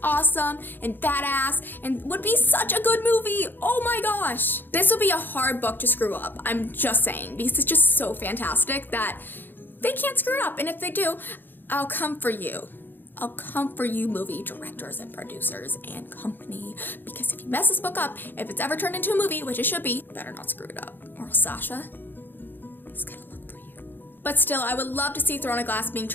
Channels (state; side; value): late; right; 0.093 ms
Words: awesome and badass, and would be such a good movie. Oh my gosh. This would be a hard book to screw up, I'm just saying, because it's just so fantastic that they can't screw it up, and if they do, I'll come for you. I'll come for you, movie directors and producers and company, because if you mess this book up, if it's ever turned into a movie, which it should be, better not screw it up, or Sasha is gonna look for you. But still, I would love to see Throne of Glass being